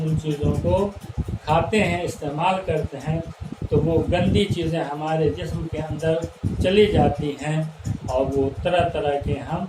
उन चीज़ों को खाते हैं, इस्तेमाल करते हैं, तो वो गंदी चीज़ें हमारे जिस्म के अंदर चली जाती हैं, और वो तरह तरह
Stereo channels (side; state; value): both; identical; correlation 1.00